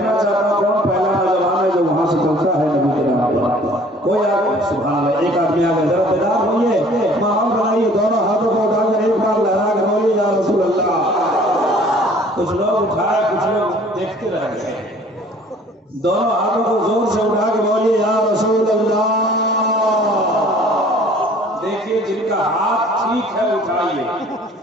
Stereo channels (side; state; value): both; normal; correlation 0.53